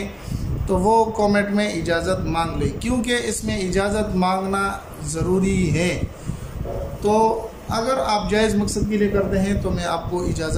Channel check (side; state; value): both; identical; correlation 1.00